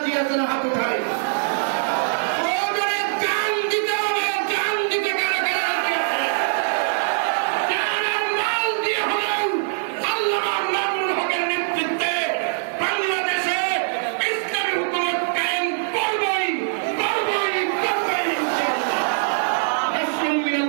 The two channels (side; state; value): left; silent; digital silence